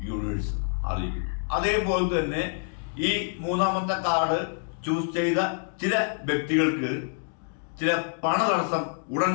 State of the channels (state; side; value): silent; right; digital silence